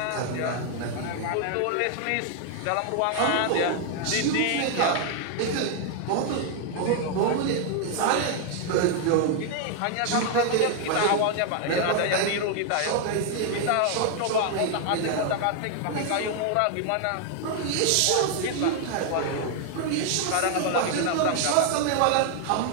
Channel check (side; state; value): both; different; correlation 0.00